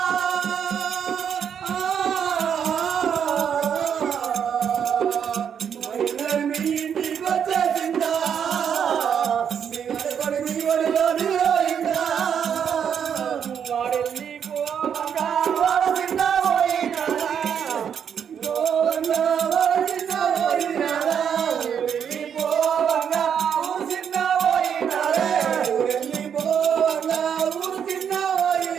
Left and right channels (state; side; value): quieter; left; 8.0 dB